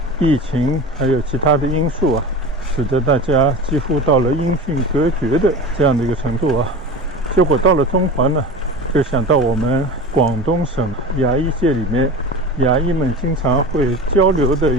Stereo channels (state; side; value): normal; both; correlation 0.32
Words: 疫情还有其他的因素啊，使得大家几乎到了音讯隔绝的这样的一个程度啊。结果到了中环呢，就想到我们广东省牙医界里面牙医们经常会交流的